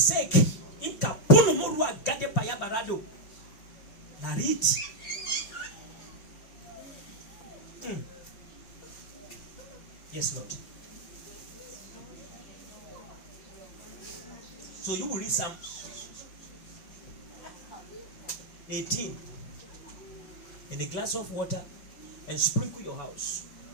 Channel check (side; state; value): right; late; 5.1 ms